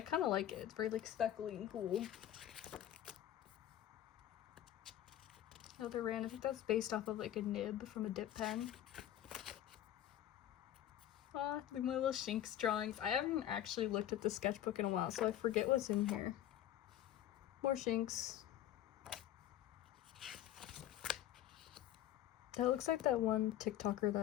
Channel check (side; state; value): right; quieter; 12.1 dB